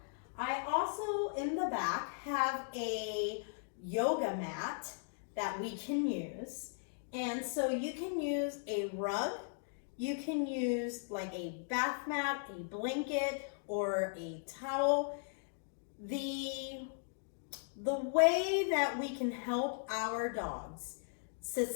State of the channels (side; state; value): right; silent; digital silence